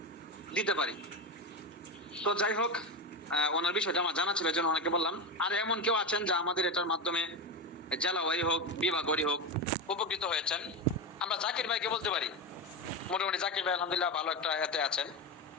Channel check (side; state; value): both; normal; correlation 0.17